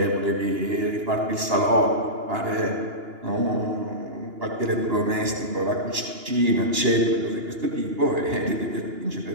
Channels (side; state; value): left; late; 2.9 ms